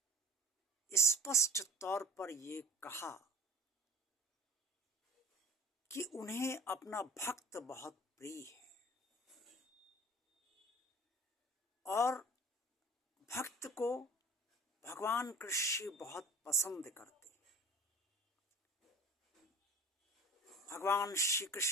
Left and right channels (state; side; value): normal; both; correlation 0.44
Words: स्पष्ट तौर पर ये कहा कि उन्हें अपना भक्त बहुत प्रिय है और भक्त को भगवान कृष्ण बहुत पसंद करते हैं। भगवान श्री